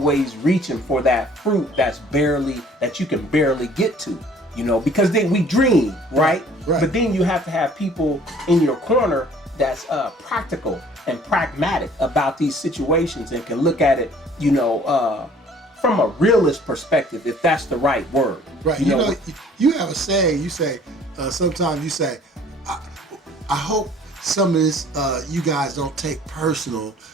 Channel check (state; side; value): normal; both; correlation 0.54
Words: reaching for that fruit that you can barely get to, you know, because then we dream, right? But then you have to have people in your corner that's practical and pragmatic about these situations and can look at it, you know, from a realist perspective, if that's the right word. Right. You know, you have a saying, you say, sometimes you say, I hope some of this you guys don't take personal,